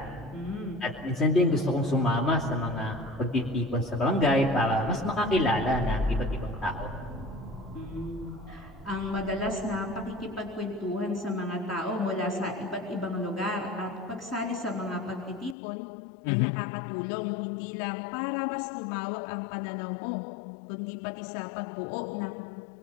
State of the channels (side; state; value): right; drops out; at 15.6 s